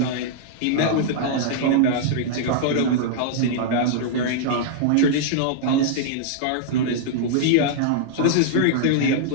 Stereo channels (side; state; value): both; different; correlation -0.02